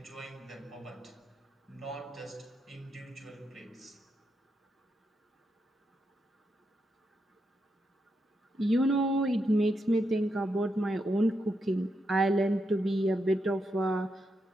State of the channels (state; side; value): normal; both; correlation 0.83